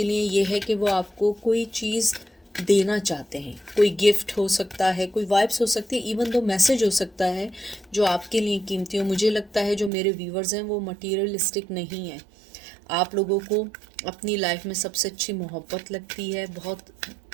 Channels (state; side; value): drops out; left; at 9.9 s